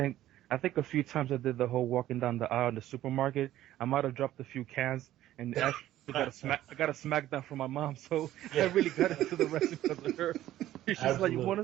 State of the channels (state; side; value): quieter; left; 13.7 dB